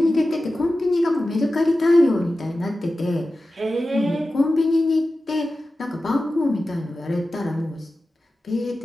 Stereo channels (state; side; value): normal; both; correlation 0.94